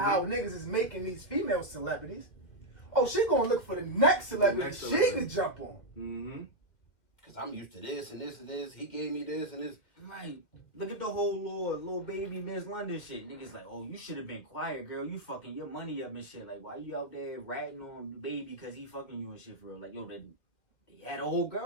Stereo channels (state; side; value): late; right; 1.8 ms